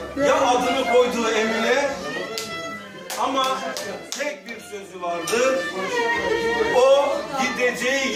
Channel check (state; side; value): identical; both; correlation 1.00